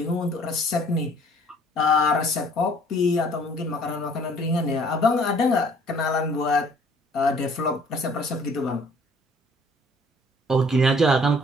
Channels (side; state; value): both; normal; correlation 0.57